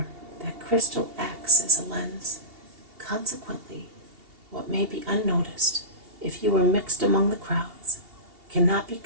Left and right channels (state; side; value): late; left; 2.8 ms